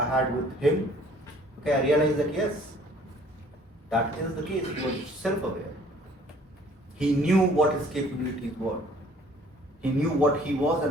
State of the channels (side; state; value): both; normal; correlation 0.55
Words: had with him, okay, I realize that yes, that is the case. He was self-aware. He knew what his capabilities were. He knew what he was